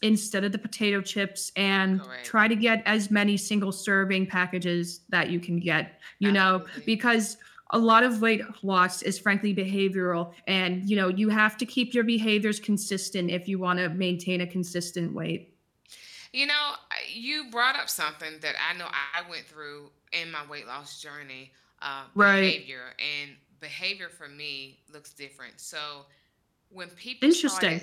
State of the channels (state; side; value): identical; both; correlation 1.00